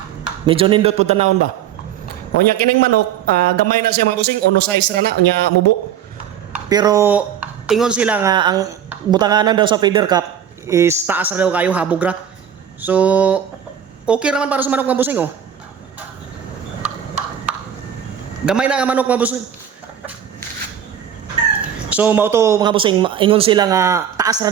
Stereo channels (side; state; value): left; quieter; 9.1 dB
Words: medyo nindot pud tanawon ba. Unya kining manok, gamay na siya mga busing, ono size ra na unya mubo. Pero ingon sila nga ang butanganan daw sa feeder cup is taas ra daw kayo habog ra. So okay naman para sa manok mga busing oh. Gamay na nga manok mga busing. So mao to mga busing, ingon sila nga taas